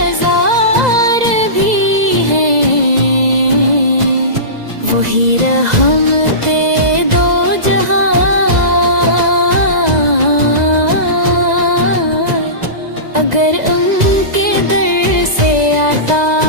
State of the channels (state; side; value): late; left; 2.0 ms